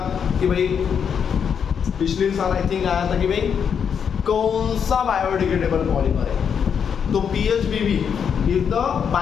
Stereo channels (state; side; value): quieter; right; 7.3 dB